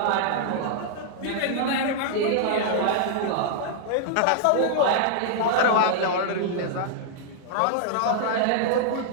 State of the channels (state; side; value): different; both; correlation -0.01